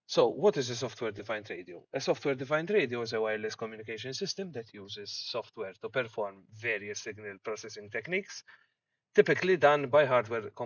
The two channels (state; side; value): identical; both; correlation 1.00